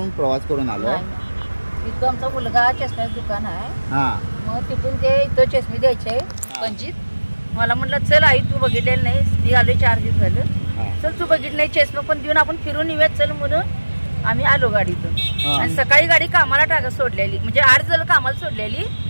प्रवास करून आलो? इथं आमचा मुलगा चष्म्याचं दुकान आहे. मग तिथून ते इथं चष्मे द्यायचे पंजीत. मला म्हटलं चल आई तू बघितलेलं नाही, मी आलोय 4 दिवस झालं, चल तू बघितलं नाही चष्मा पण देऊन आपण फिरून येऊयात चल म्हणून आम्ही आलो गाडीतून. आणि सकाळी गाडी कामाला सोडलेली म्हणजे 8 झालं कामाला सोडलेली,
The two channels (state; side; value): inverted; both; correlation -1.00